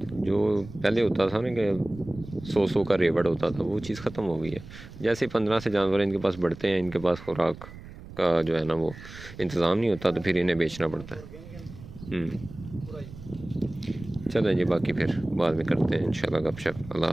जो पहले होता था ना कि 100 का रेवड़ होता था, वो चीज़ ख़त्म हो गई है। जैसे 15 से जानवर इनके पास बढ़ते हैं, इनके पास खुराक का जो है ना वो इंतज़ाम नहीं होता, तो फिर इन्हें बेचना पड़ता है। चलें जी, बाकी फिर बाद में करते हैं इंशाल्लाह गपशप। अल्लाह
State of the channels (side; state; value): right; noise; rumble, 16 dB below the sound